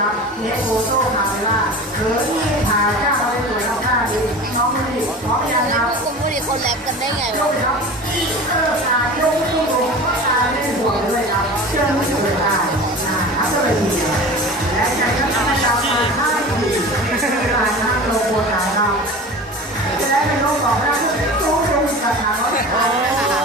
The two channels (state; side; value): normal; both; correlation 0.35